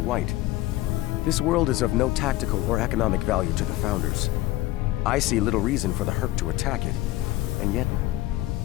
This world is of no tactical or economic value to the Founders. I see little reason for the Herc to attack it, and yet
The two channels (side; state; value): right; quieter; 16.9 dB